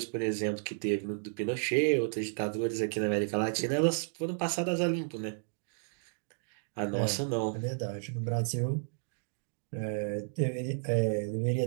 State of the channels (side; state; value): left; silent; digital silence